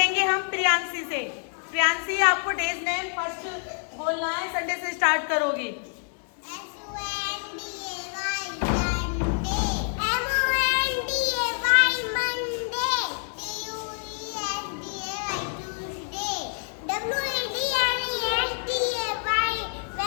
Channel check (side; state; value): right; silent; 60 dB below the other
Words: हम प्रियांशी से। प्रियांशी, आपको डेज नेम फर्स्ट बोलना है, संडे से स्टार्ट करोगी।